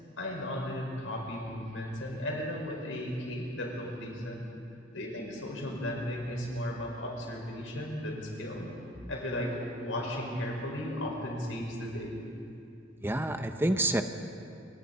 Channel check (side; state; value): both; normal; correlation 0.50